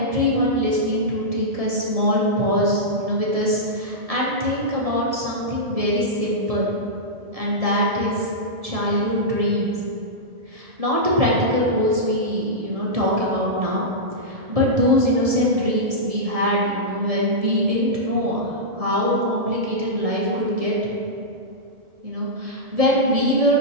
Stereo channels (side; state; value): left; late; 1.7 ms